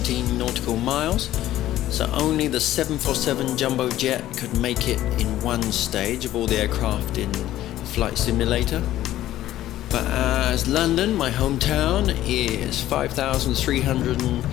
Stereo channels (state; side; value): quieter; right; 13.8 dB